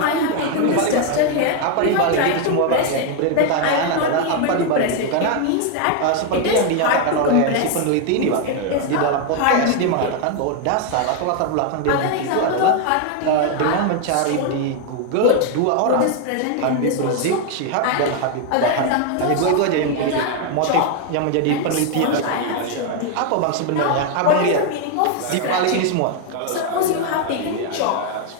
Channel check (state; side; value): different; both; correlation 0.01